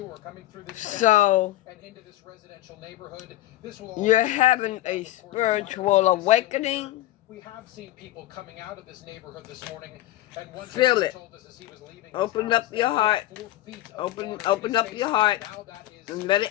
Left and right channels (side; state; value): right; quieter; 15.4 dB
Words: coming through this and into this residential neighborhood. This will you're having a spiritual awakening. We have seen people coming out of this neighborhood this morning, and one feel it. told us as he was leaving. Open up your heart. Open up your heart and let it